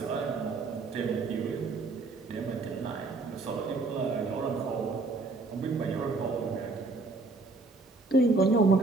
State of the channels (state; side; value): quieter; left; 3.5 dB